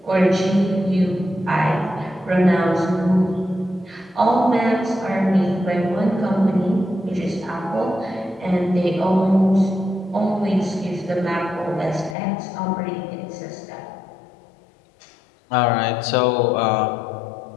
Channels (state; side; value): drops out; right; at 12.2 s